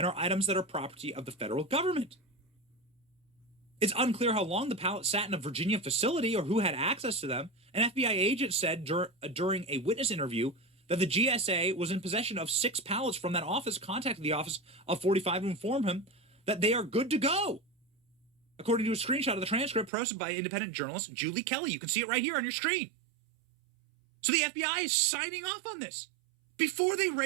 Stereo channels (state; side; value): drops out; left; at 19.9 s